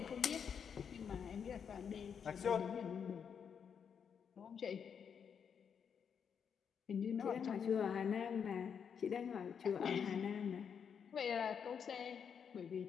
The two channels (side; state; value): right; quieter; 7.2 dB